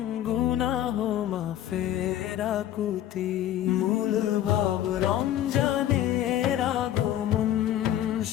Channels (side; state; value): right; quieter; 12.0 dB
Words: গুনাহ মাফের আকুতি। মূল ভাব রমজানের আগমন,